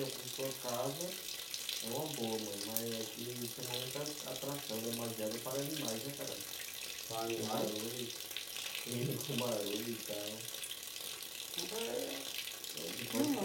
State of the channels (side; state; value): right; noise; hum, 27 dB below the sound